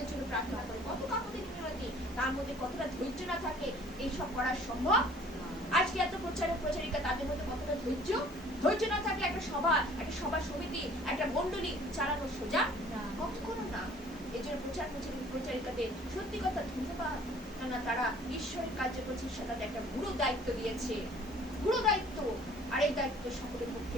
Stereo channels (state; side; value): noise; right; hiss, 26 dB below the sound